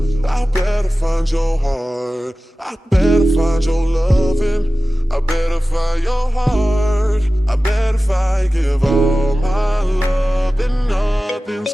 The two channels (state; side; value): normal; both; correlation 0.96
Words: I better find your heart. I better find your loving. I better find your heart. I bet if I give all my love, then nothing's